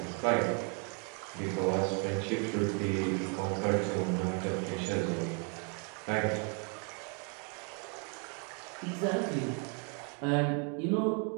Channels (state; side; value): quieter; left; 37.9 dB